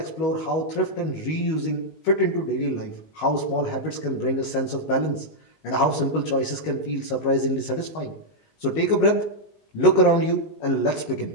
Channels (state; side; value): late; right; 19 ms